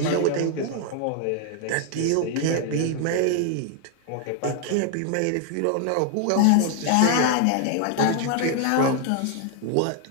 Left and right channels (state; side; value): different; both; correlation 0.00